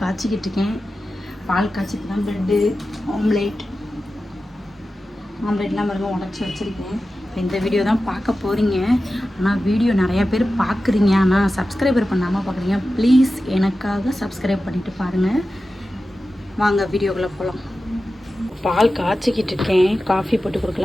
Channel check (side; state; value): both; normal; correlation 0.93